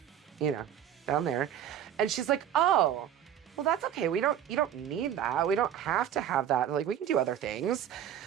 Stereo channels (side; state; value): left; quieter; 10.0 dB